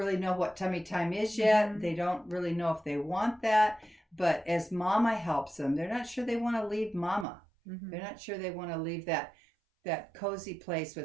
know what tummy time is yet. They don't really know if they want that. But as mama helps them, they're not sure they want to leave mama. They're not sure they want to leave that cozy place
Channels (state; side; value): drops out; left; at 7.2 s